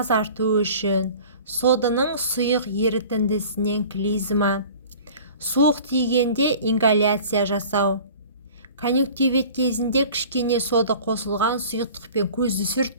үшін, соданың сұйық ерітіндісінен клизма, суық тигенде ингаляция жасау, конъюнктивит кезінде кішкене сода қосылған сұйықтықпен көзді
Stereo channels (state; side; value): inverted; both; correlation -0.43